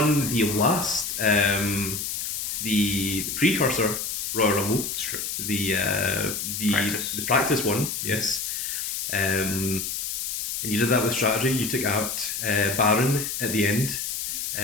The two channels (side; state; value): left; noise; hiss, 3 dB below the sound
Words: the last the precursor Royal Rumble. It's true. The Practice. practice one. Yes. And and you did that with strategy. You took out Baron at the end.